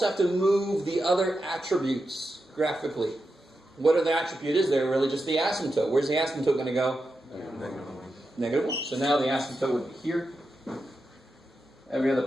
have to move the other attributes graphically. What are the attribute is there? Really just the asymptote. Where's the asymptote going to go? -1. So now the asymptote would be here. Every other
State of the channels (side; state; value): both; normal; correlation 0.88